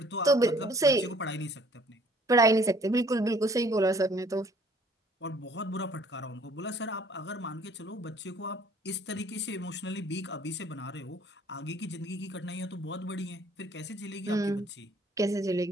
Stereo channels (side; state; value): both; normal; correlation 0.57